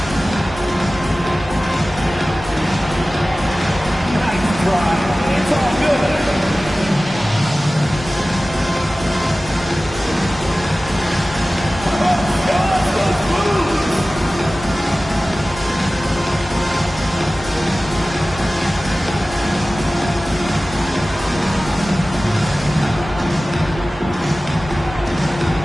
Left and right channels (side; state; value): both; normal; correlation 0.97